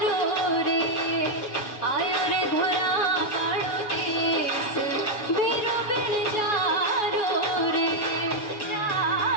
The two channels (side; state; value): right; late; 7.0 ms